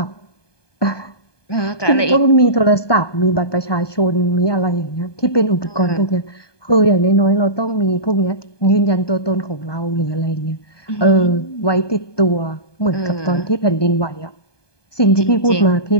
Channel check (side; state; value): right; late; 1.2 ms